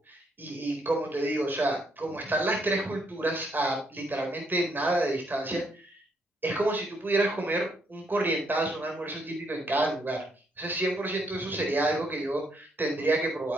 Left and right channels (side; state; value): both; normal; correlation 0.74